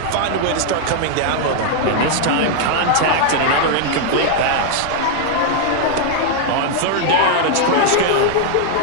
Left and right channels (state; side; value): different; both; correlation 0.00